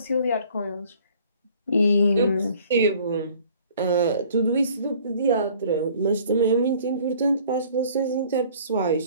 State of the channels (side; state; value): both; inverted; correlation -0.54